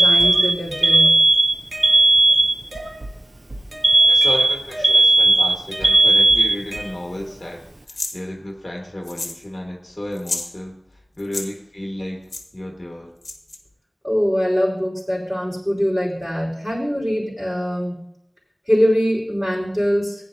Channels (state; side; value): normal; both; correlation 0.95